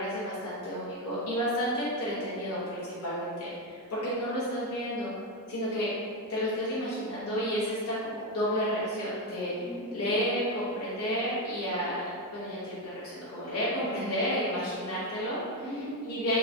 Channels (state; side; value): normal; both; correlation 0.09